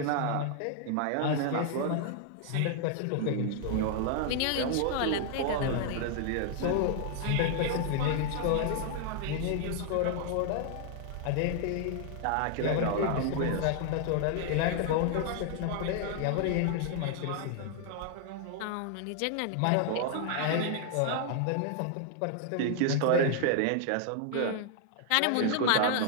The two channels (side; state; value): both; different; correlation 0.00